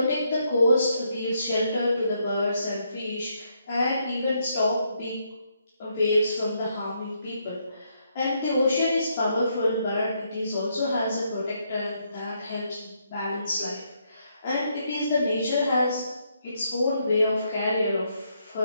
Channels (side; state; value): both; inverted; correlation -0.76